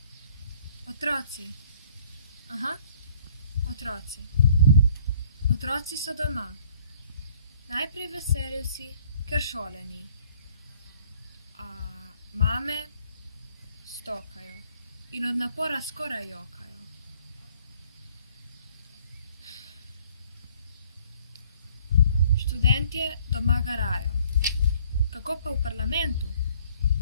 Otroci. Aha, otroci. Otroci so doma. Najprej veseli vsi, ker šole ni. A mame stokajo in od napora skoraj jokajo. Študentje doma garajo. Kako pa v parlamentu?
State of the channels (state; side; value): inverted; both; correlation -0.58